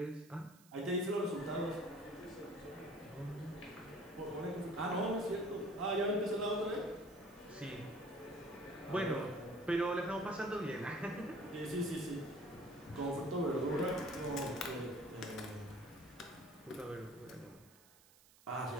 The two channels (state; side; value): noise; right; hiss, 25 dB below the sound